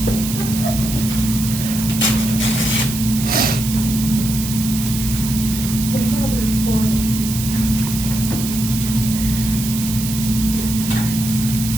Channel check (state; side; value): noise; right; hiss, 7 dB below the sound